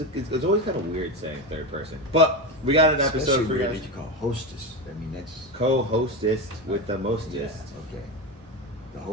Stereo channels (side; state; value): both; normal; correlation 0.18